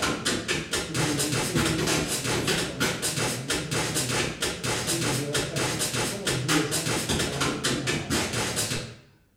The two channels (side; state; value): both; identical; correlation 1.00